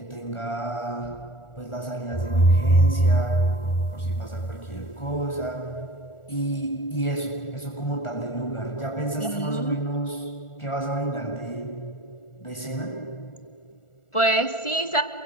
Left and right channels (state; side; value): late; right; 1.4 ms